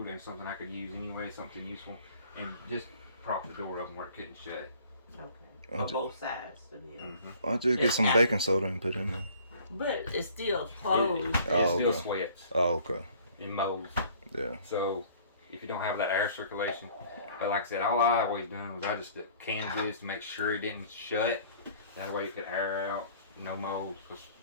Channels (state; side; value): inverted; both; correlation -0.53